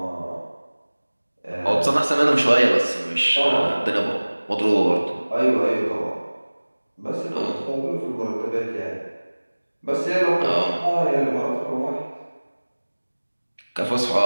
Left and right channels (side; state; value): both; inverted; correlation -1.00